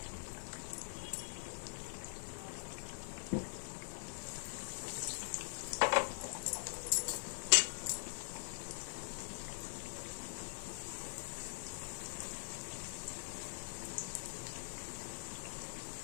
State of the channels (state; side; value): silent; right; digital silence